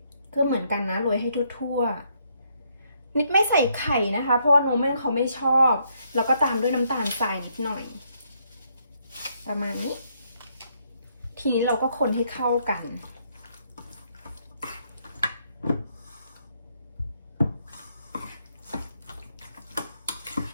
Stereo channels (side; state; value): both; inverted; correlation -0.73